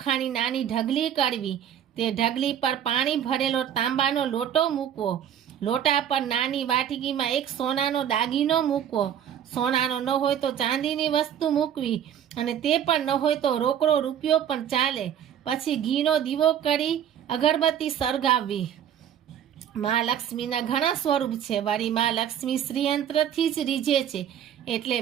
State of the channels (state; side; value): quieter; left; 9.6 dB